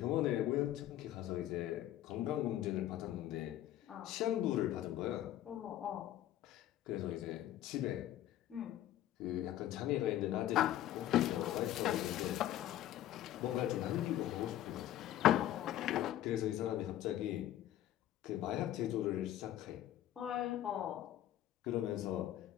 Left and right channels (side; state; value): right; quieter; 12.9 dB